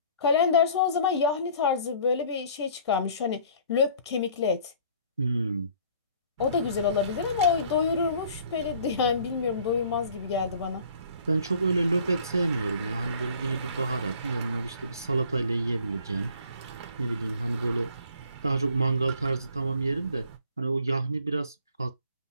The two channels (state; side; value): inverted; both; correlation -0.53